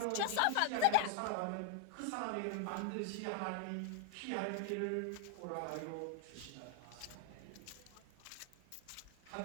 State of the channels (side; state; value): both; different; correlation 0.00